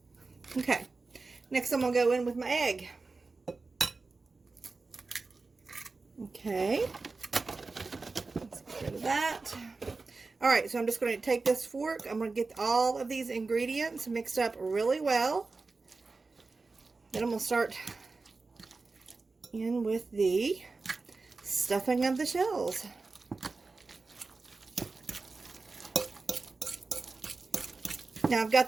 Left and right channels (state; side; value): quieter; left; 3.9 dB